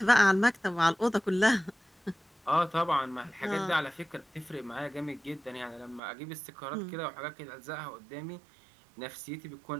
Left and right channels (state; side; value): drops out; left; at 6.0 s